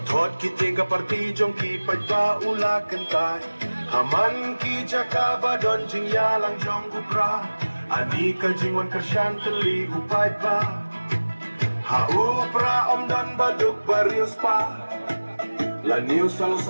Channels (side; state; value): both; inverted; correlation -1.00